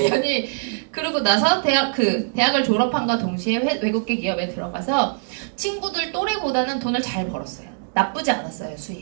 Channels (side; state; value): left; silent; 64 dB below the other